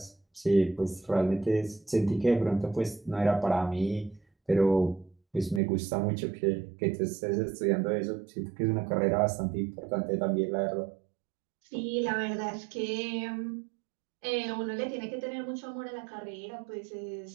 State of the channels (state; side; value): drops out; left; at 5.6 s